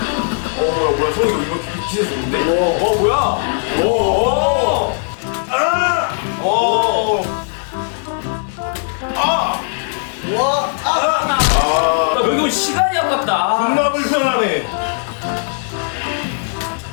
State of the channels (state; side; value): silent; right; digital silence